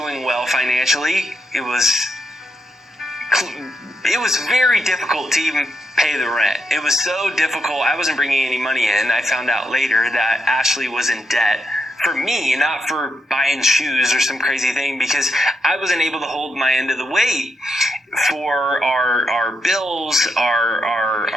well financially. It was very difficult to even pay the rent. It was so difficult. I wasn't bringing any money in. I found out later that Ashley was in debt. For me, not for buying shoes or some crazy thing, because I wasn't able to hold my end of the weight for our bills,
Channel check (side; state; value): both; normal; correlation 0.83